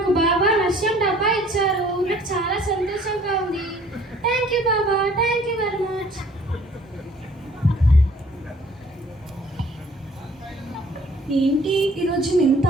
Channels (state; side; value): normal; both; correlation 0.56